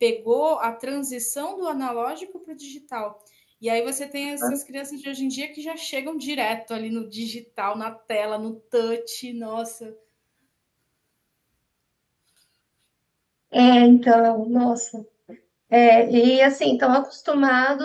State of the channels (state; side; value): identical; both; correlation 1.00